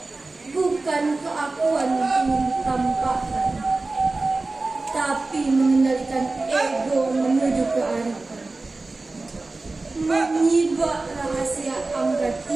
Bukan keakuan yang ingin ditampakkan, tapi mengendalikan ego menuju kearifan. Menyibak rahasia angka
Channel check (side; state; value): left; quieter; 3.4 dB